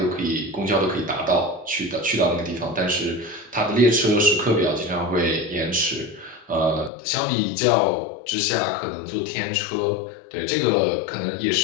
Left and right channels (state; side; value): drops out; right; at 6.9 s